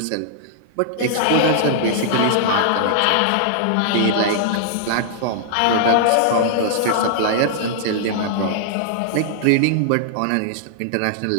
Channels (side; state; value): both; different; correlation -0.01